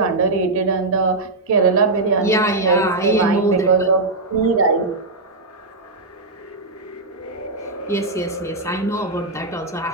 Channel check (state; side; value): quieter; left; 3.1 dB